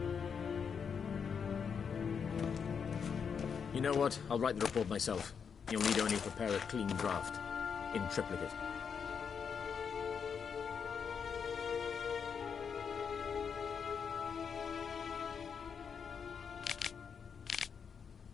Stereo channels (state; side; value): quieter; right; 6.6 dB